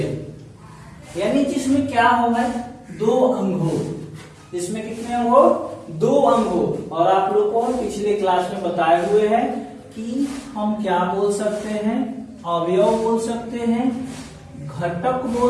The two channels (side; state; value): both; identical; correlation 1.00